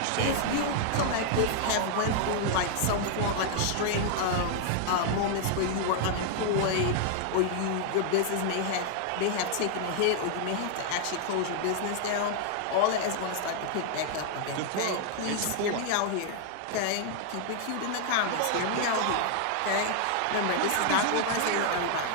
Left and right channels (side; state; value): both; different; correlation 0.00